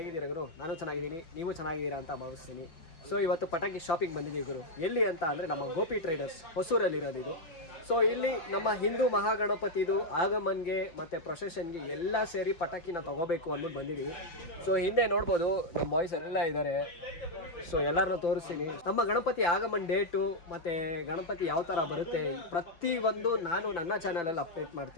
ಗುರು? ನಾನು ಚೆನ್ನಾಗಿದ್ದೀನಿ, ನೀವು ಚೆನ್ನಾಗಿದ್ದೀರಾ ಅಂತ ಭಾವಿಸ್ತೀನಿ. ಸೊ ಇವತ್ತು ಪಟಾಕಿ ಶಾಪಿಂಗ್ ಬಂದಿದ್ದೀವಿ ಗುರು. ಎಲ್ಲಿ ಅಂತ ಅಂದರೆ ನಮ್ಮ ಗೋಪಿ ಟ್ರೇಡರ್ಸ್ ಹೊಸೂರಲ್ಲಿರೋದು ಇದು. ಸೊ ಇಲ್ಲಿ ನಮ್ಮ ಹಿಂದೂ ಮಹಾಗಣಪತಿದು ಆಗಮನ್ಗೆ ಮತ್ತು ಪ್ರೊಸೆಷನ್ಗೆ ಎಲ್ಲ ಸೇರಿ ಪಟಾಕಿನ ತೊಗೋಬೇಕು ಅಂದ್ಬಿಟ್ಟು ಬಂದಿದ್ದೀವಿ. ಸೊ ಹಿಂದೆ ನೋಡ್ಬೋದು ನಮ್ಮ ಬಾಯ್ಸ್ ಎಲ್ಲ ಇದ್ದಾರೆ. ಸೊ ಎಲ್ಲರನ್ನೂ ತೋರಿಸ್ತೀನಿ. ನಮ್ಮ ಗಣಪತಿ ಆಗಮನ್ ಡೇಟು ಮತ್ತು ಗಣಪತಿ ಯಾವ ಥರ ಬರುತ್ತೆ ಪ್ರತಿಯೊಂದು ನಾನು ನನ್ನ ಚಾನಲಲ್ಲಿ ಅಪ್ಡೇಟ್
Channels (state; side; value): late; right; 5.9 ms